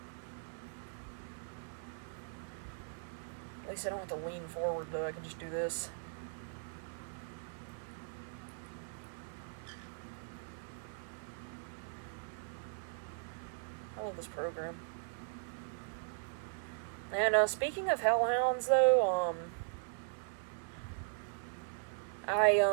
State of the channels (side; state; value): left; silent; digital silence